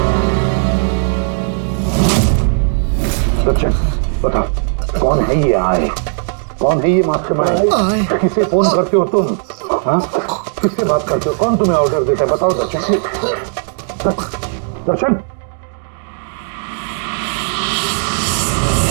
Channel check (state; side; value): silent; left; digital silence